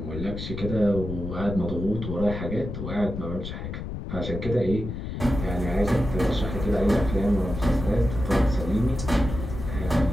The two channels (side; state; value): left; noise; rumble, 6 dB below the sound